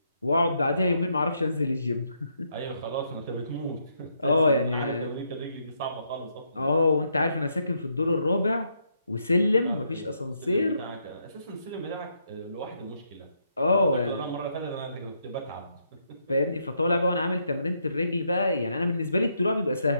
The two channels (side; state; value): both; inverted; correlation -0.77